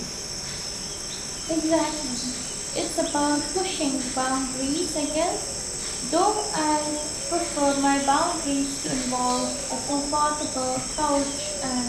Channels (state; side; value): identical; both; correlation 1.00